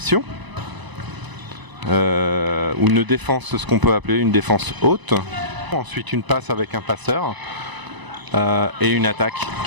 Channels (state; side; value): late; left; 1.0 ms